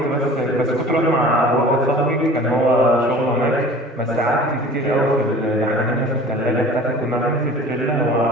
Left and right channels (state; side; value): normal; both; correlation 0.44